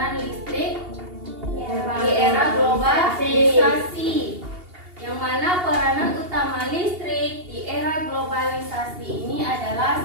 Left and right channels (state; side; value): late; left; 2.8 ms